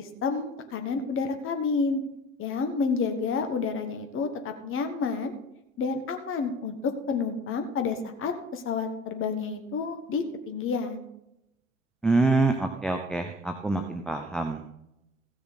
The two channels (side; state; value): both; normal; correlation 0.44